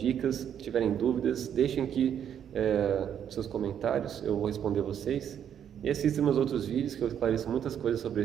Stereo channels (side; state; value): left; quieter; 9.1 dB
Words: tiverem dúvidas, deixem aqui seus comentários, eu vou responder vocês. E assistam meus outros vídeos que eu esclareço muitas coisas sobre